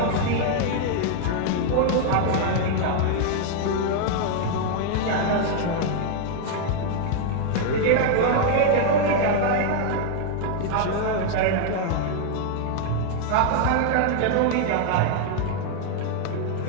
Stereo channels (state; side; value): different; both; correlation 0.00